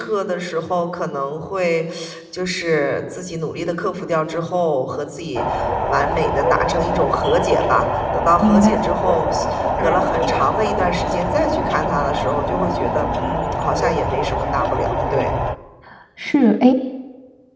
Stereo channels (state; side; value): identical; both; correlation 1.00